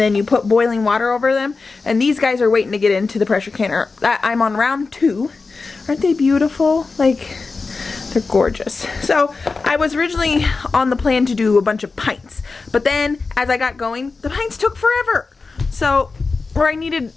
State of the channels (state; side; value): quieter; right; 4.2 dB